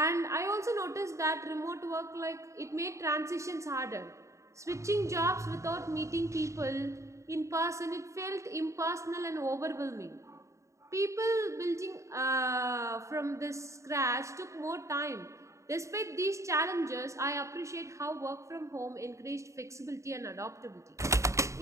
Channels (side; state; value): left; late; 0.14 ms